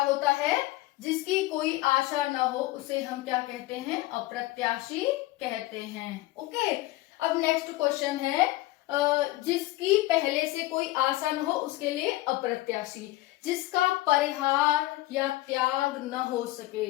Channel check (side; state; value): right; quieter; 18.0 dB